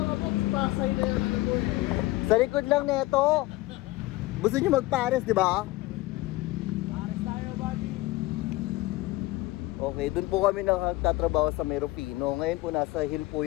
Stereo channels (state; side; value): quieter; right; 19.1 dB